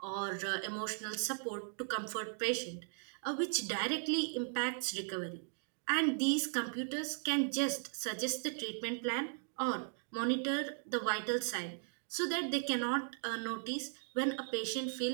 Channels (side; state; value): left; silent; 53 dB below the other